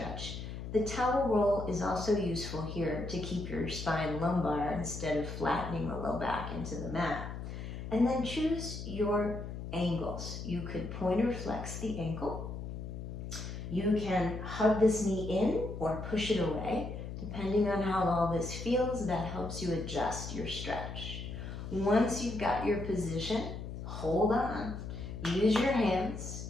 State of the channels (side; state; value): left; noise; hum, 8 dB below the sound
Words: The towel roll is also useful here to keep your spine lumbar instead of flattening the low back into the mat. And then choose your angles. You could pointer flex the ankle. You can hug this knee in or push it away. Depending on how all this feels, that helps you adjust your stretch. Once you've got your position, hold on. Use your hands,